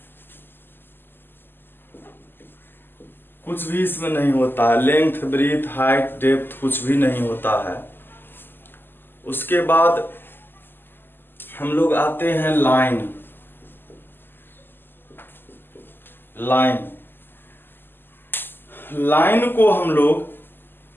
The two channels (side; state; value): right; late; 0.096 ms